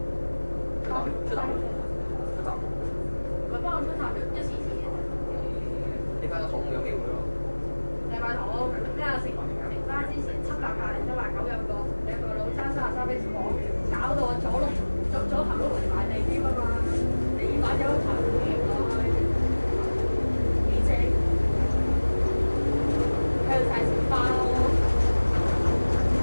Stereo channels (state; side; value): inverted; both; correlation -1.00